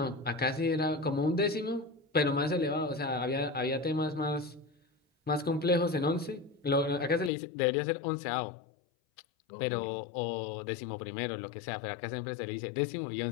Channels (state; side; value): drops out; right; at 7.3 s